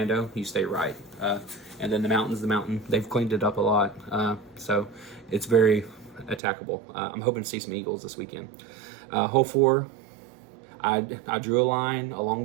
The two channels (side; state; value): left; drops out; at 6.4 s